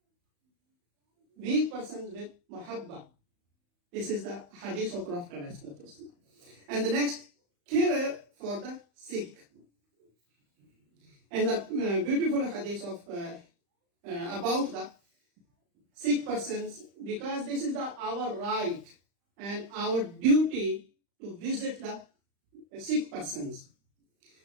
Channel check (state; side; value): late; left; 35 ms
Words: Weak persons with mahabba. This is the hadith of Prophet ﷺ. And the next, care for the sick. And the beautiful hadith of about the sick persons, because this is our right and our duty to visit the sick persons.